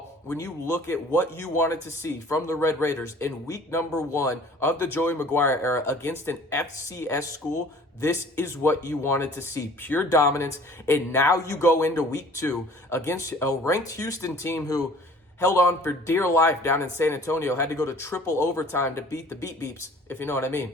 when you look at what you wanted to see from the Red Raiders in week number 1 of the Joey McGuire era against an FCS school, this is what you wanted to see. Pure dominance. And now you go into week 2 against a ranked Houston team who held on for dear life down in San Antonio, had to go to triple overtime to beat the Beat Beeps, if you know what I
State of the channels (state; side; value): normal; both; correlation 0.50